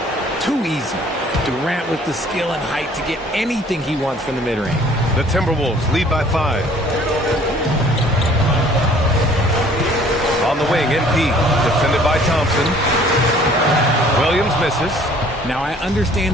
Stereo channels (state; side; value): normal; both; correlation 0.55